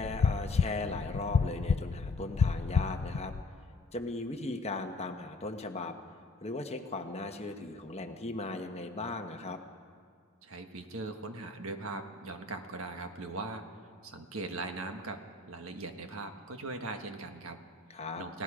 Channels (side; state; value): right; quieter; 3.3 dB